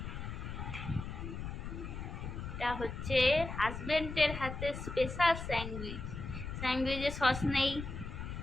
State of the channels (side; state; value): left; noise; rumble, 7 dB below the sound